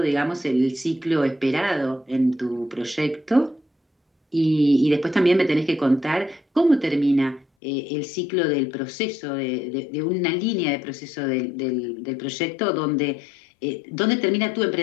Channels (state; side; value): drops out; right; at 7.5 s